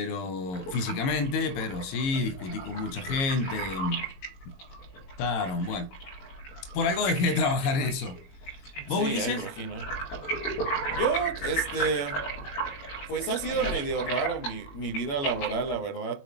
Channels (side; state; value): right; late; 22 ms